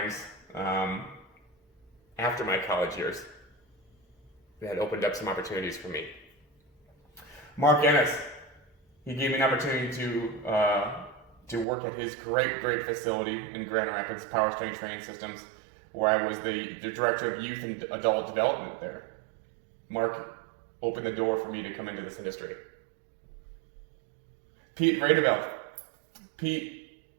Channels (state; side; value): drops out; left; at 11.7 s